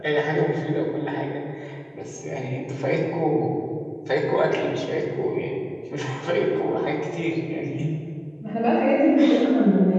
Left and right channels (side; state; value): both; identical; correlation 1.00